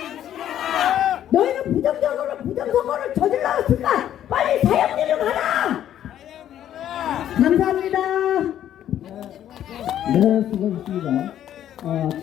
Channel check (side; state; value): right; quieter; 11.1 dB